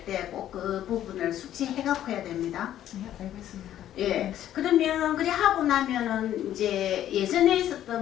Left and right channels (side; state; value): right; quieter; 11.7 dB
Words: 때 꼭 그 부분을 숙지해갖고 해야 됩니다. 예, 알겠습니다. 예. 그러면 그래 하고 나면은 이제 예전에